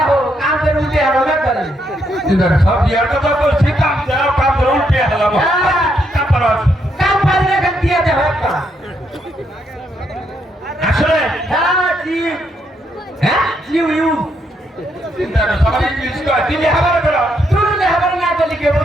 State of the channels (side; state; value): both; normal; correlation 0.76